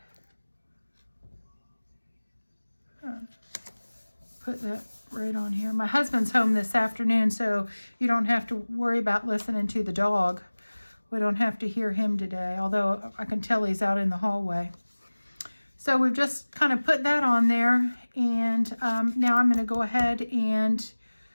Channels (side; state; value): both; inverted; correlation -1.00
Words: Put that right on here. My husband's home this afternoon, so you don't have to worry about listening to the dog. We don't have to hear him today, although I can tell he's out in the hallway. So we've just kind of put that on there, and now I'm going to go ahead and